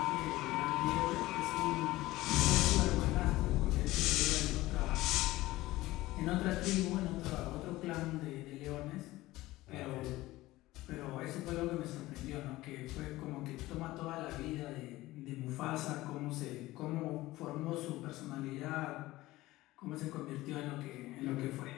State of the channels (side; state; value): right; quieter; 17.9 dB